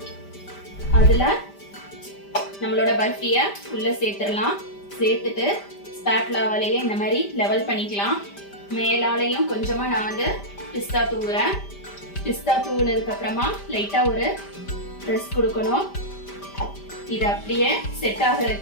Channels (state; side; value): late; right; 5.1 ms